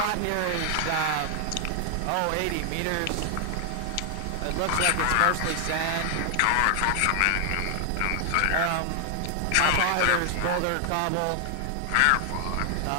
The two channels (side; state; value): both; different; correlation 0.00